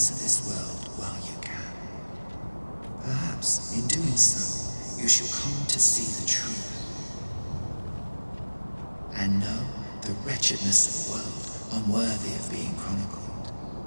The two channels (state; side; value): inverted; both; correlation -1.00